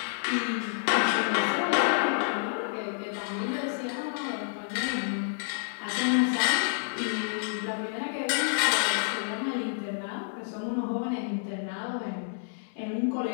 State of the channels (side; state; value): right; silent; digital silence